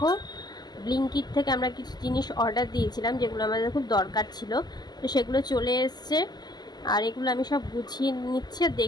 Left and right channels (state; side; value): late; right; 0.20 ms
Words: ব্লিঙ্কিট থেকে আমরা কিছু জিনিস অর্ডার দিয়েছিলাম যেগুলো আমাদের খুব দরকার ছিল। তো সেগুলো চলে এসছে, আর এগুলো আমি সব গুছিয়ে নিচ্ছি আর